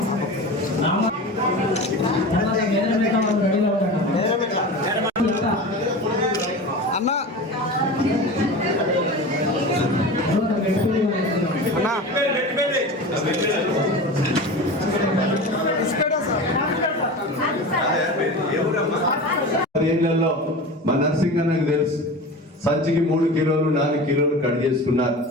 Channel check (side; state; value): both; normal; correlation 0.31